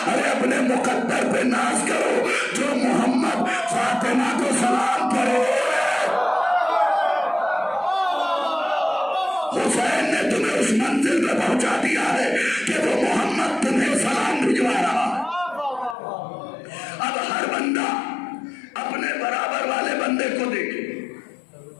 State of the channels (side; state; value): right; drops out; at 16.0 s